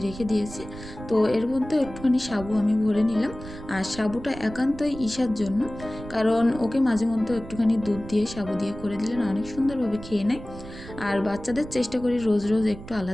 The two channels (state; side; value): noise; right; rumble, 14 dB below the sound